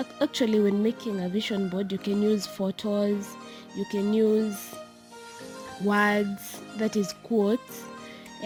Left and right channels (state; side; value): identical; both; correlation 1.00